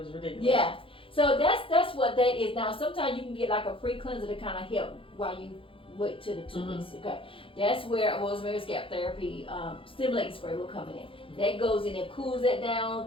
ridiculous. Yeah. So that's what that is. Now sometimes you can get like a pre-cleanser to kind of help while you wait till the 2 weeks. Okay. That's where rosemary scalp therapy stimulating spray will come in. That goes in and cools that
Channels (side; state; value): right; late; 0.26 ms